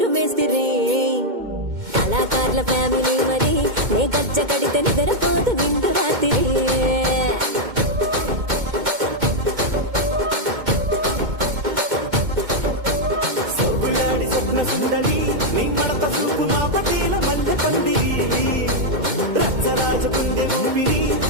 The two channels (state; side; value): late; left; 2.1 ms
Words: మేస్తిరి కళాకారుల ఫ్యామిలీ మరి నే గజ్జ కడితే నిద్రపోదు నిండు రాత్రి